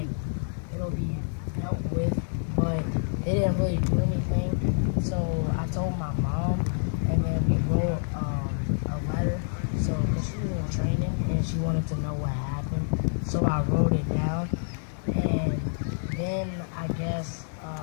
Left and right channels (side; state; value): right; silent; digital silence